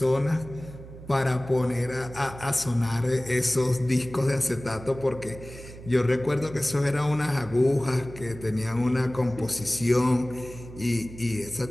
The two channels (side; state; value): right; noise; hum, 15 dB below the sound